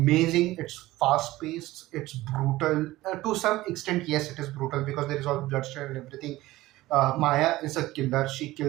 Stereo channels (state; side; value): quieter; left; 17.5 dB